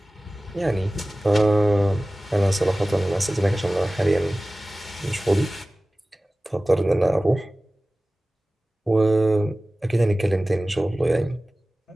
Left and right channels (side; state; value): both; normal; correlation 0.97